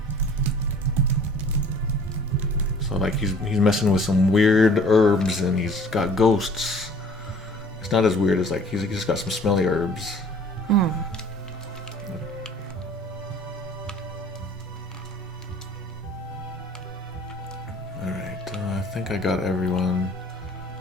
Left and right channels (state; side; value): normal; both; correlation 0.51